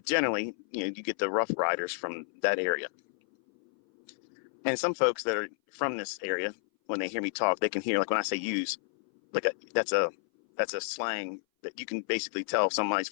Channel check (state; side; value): silent; right; 57 dB below the other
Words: generally, you get the Rough Riders from that area. And some folks that are from this area, when they hear me talk, they can hear, like when I say use, like that's a slang that you can basically tell if somebody's